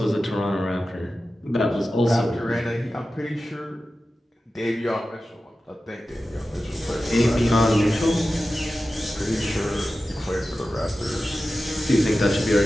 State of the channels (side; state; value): both; normal; correlation 0.94